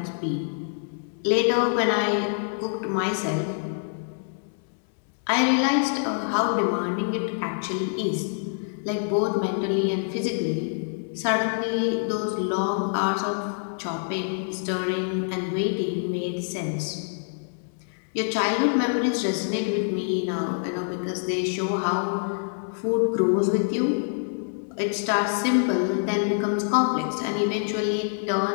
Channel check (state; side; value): silent; right; 61 dB below the other